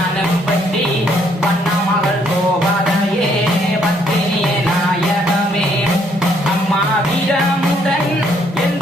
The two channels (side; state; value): both; normal; correlation 0.68